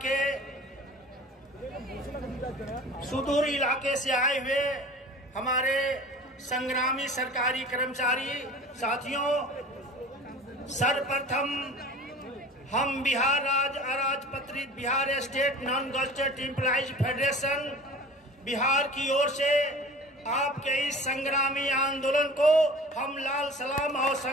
के सुदूर इलाके से आए हुए हमारे संग्रामी सरकारी कर्मचारी साथियों, सर्वप्रथम हम बिहार राज्य अराजपत्रित Bihar state non gazetted employees federation Bihar की ओर से आपके इस संग्रामी आंदोलन को हम लाल सलाम और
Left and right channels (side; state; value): both; normal; correlation 0.40